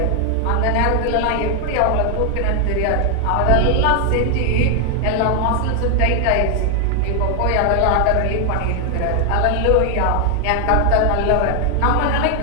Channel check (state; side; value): different; both; correlation 0.00